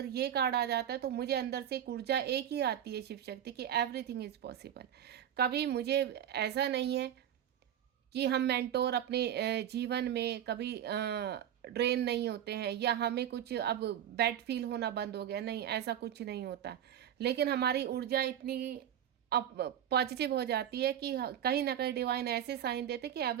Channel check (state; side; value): quieter; left; 10.3 dB